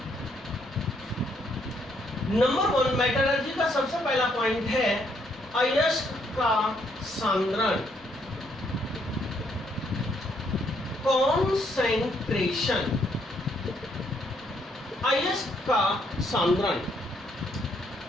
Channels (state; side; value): normal; both; correlation 0.72